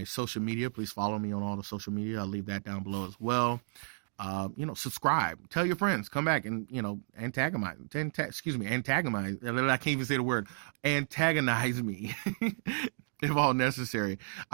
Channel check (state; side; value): silent; left; digital silence